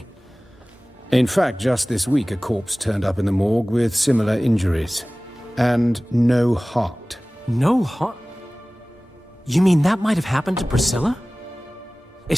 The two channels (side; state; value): both; normal; correlation 0.98